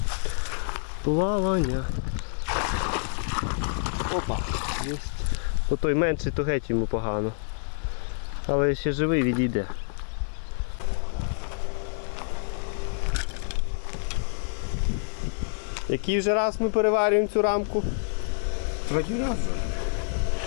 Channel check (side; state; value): right; silent; digital silence